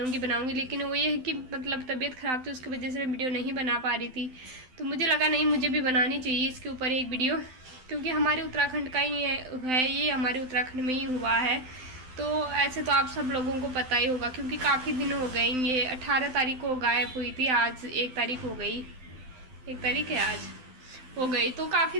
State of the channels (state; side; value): late; left; 12 ms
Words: लेकिन वो ये है कि मतलब तबीयत ख़राब थी, उसकी वजह से मैं वीडियो नहीं बना पा रही थी। तो मुझे लगा नहीं, मुझे भी बनानी चाहिए इसके ऊपर एक वीडियो, क्योंकि हमारे उत्तराखंड का ही है ये, हमारे उत्तराखंड में ही हुआ है। तो ऐसे तो आप सब लोगों को पता ही होगा क्योंकि काफ़ी दिन हो गए। ये 18 तारीख को गायब हुई थी, आज 1 तारीख हो गई, 1 तारीख है आज हो गई, तो